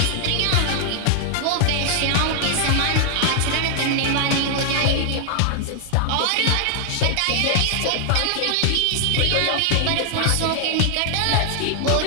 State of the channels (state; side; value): different; both; correlation 0.00